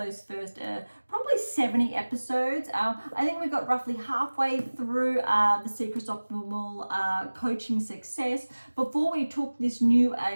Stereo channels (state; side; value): inverted; both; correlation -1.00